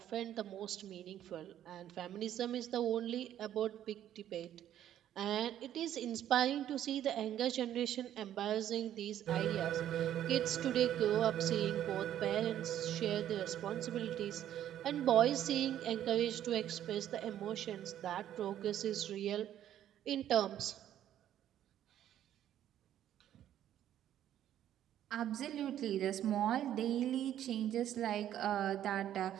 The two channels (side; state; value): left; quieter; 11.3 dB